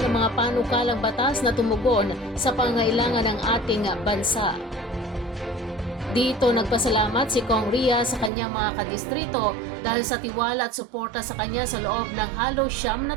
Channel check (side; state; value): left; drops out; at 8.3 s